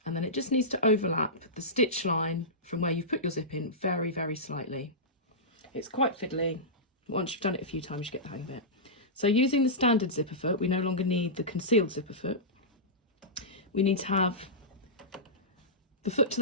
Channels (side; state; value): both; normal; correlation -0.15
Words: and then it just needs to overlap the stitch line from where you've put your zip in very, very slightly. It's quite fiddly. Once you've done it a few times, you get the hang of it. So using the standard zipper foot, we no longer need the concealed zipper foot. We need to have the foot to